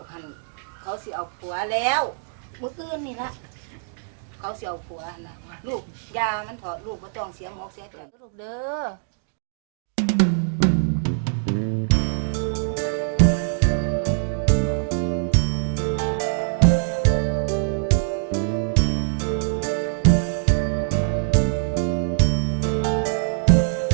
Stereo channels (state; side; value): silent; left; digital silence